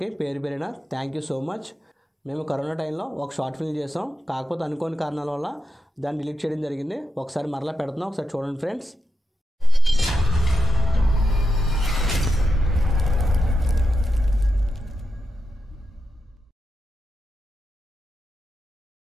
పేరు పేరిన థ్యాంక్ యూ సో మచ్. మేము కరోనా టైంలో ఒక షార్ట్ ఫిల్మ్ చేసాం, కాకపోతే అనుకోని కారణాల వల్ల దాన్ని డిలీట్ చేయడం జరిగింది. ఒకసారి మరలా పెడుతున్నాం, ఒకసారి చూడండి ఫ్రెండ్స్.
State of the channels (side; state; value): both; normal; correlation 0.87